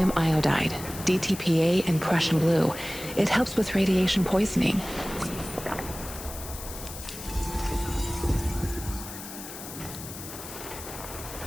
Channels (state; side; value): noise; left; hiss, 11 dB below the sound